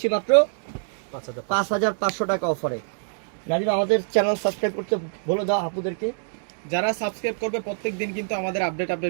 মাত্র 5,500 টাকা অফারে। নাজিম, আমাদের চ্যানেল সাবস্ক্রাইব করতে বলে দাও আপুদেরকে। যারা সাবস্ক্রাইব করবে প্রত্যেক দিন কিন্তু আমাদের আপডেট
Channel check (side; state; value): left; silent; 62 dB below the other